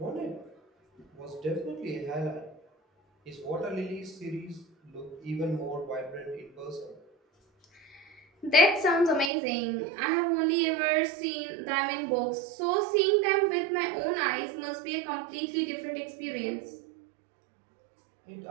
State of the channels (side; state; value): left; drops out; at 9.3 s